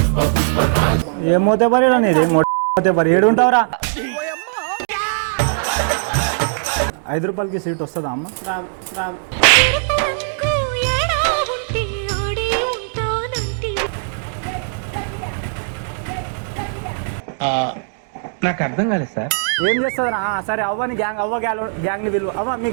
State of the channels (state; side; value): silent; left; digital silence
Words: ఏమోతే పరి అనేది మోతే పరి ఏడుంటావురా? 5 రూపాయలకి సీట్ వస్తుందా అమ్మ? రాదు రాదు. నాకు అర్థం కాలేదు సార్. ఏం చేస్తుందా? సరే అవ్వని గ్యాంగ్, అవ్వ గ్యాంగ్ ని పిలువు. అవ్వ మీ